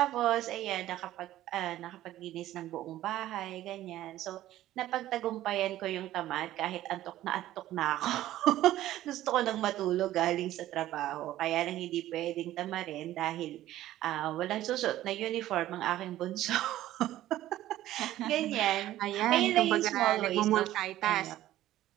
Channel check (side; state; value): left; quieter; 14.2 dB